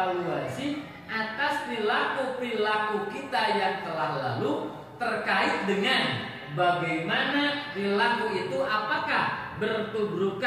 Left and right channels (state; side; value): identical; both; correlation 1.00